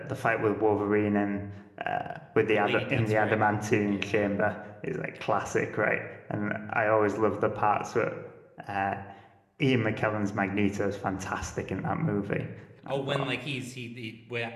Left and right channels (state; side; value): identical; both; correlation 1.00